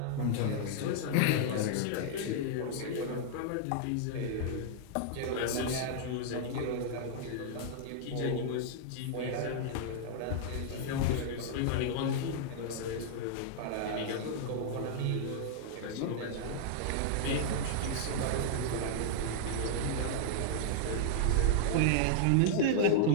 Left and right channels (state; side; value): different; both; correlation -0.01